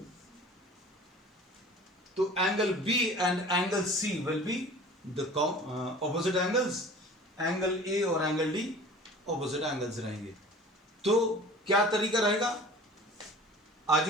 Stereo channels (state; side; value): normal; both; correlation 0.43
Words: तो angle B and angle C will be the opposite angles, angle A और एंगल डी ऑपोजिट एंगल्स रहेंगे। तो क्या तरीका रहेगा?